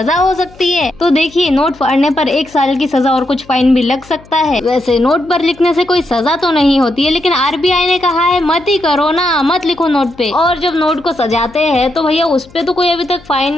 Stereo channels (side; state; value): left; noise; hum, 25 dB below the sound